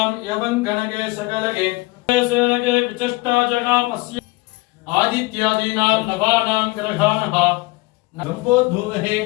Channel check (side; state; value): right; quieter; 22.8 dB